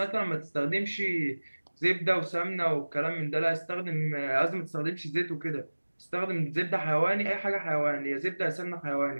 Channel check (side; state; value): both; inverted; correlation -1.00